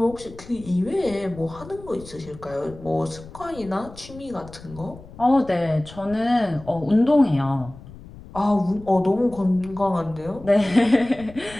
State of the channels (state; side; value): noise; left; rumble, 18 dB below the sound